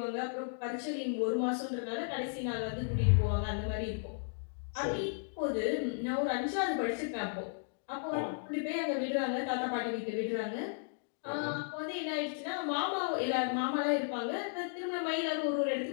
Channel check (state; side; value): silent; right; digital silence